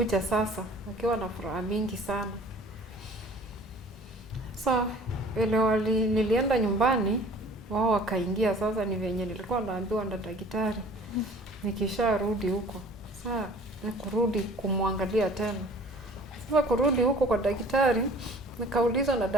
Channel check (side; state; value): both; normal; correlation 0.49